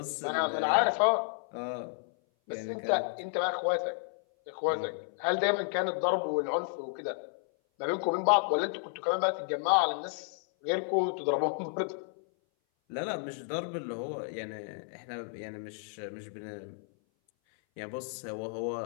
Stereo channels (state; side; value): silent; right; 56 dB below the other